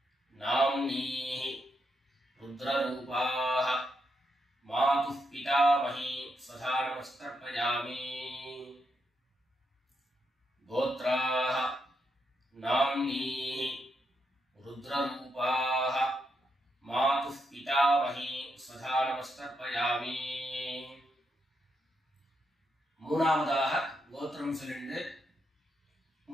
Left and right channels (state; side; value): normal; both; correlation 0.81